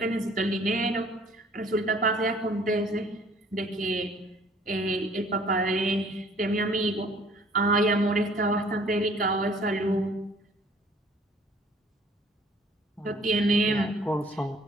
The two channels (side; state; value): both; normal; correlation 0.56